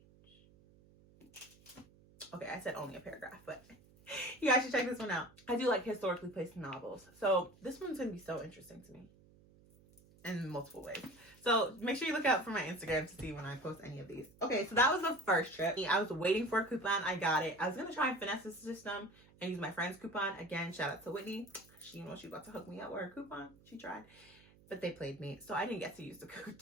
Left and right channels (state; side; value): noise; right; hum, 26 dB below the sound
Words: Okay, I said only a paragraph, but you guys should check this one out. I do like historically placed novels. So this one's going to be so interesting to me in multiple ways. So make sure you look out for my Instagram to see when I post any of these. Okay, so that was the first trip. I was waiting for a coupon. I got it. I was going to try and finesse the system and use my friend's coupon. Again, shout out to Whitney. She about to hook me up with her coupon. She tried. But they played me, so I didn't get to use